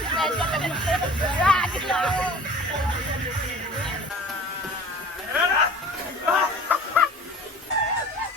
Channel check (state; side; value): normal; both; correlation 0.43